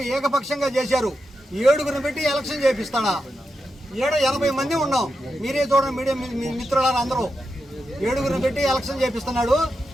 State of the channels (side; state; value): both; normal; correlation 0.87